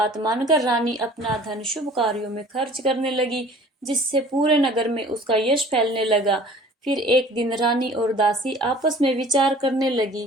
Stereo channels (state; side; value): normal; both; correlation 0.48